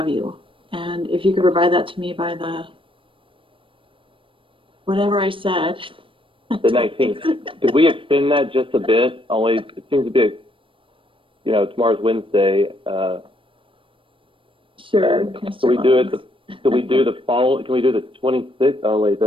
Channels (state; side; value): late; left; 0.25 ms